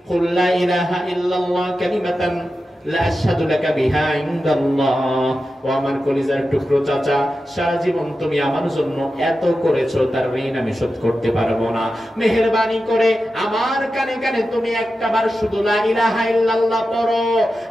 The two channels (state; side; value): normal; both; correlation 0.91